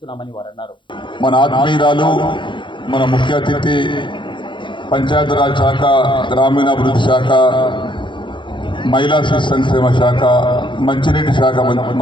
వారన్నారు. మన ఆత్మీయురాలు, మన ముఖ్య అతిథి, పంచాయతీరాజ్ శాఖ, గ్రామీణాభివృద్ధి శాఖ, మహిళా శిశు సంక్షేమ శాఖ, మంచినీటి శాఖ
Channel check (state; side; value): late; right; 0.23 ms